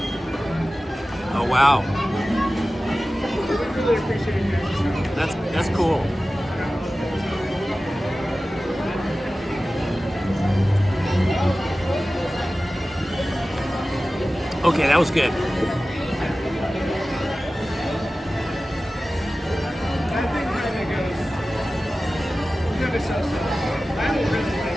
Oh wow, that's cool. Okay, that was good. I think kind of goes. Good association. I don't really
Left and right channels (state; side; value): normal; both; correlation 0.96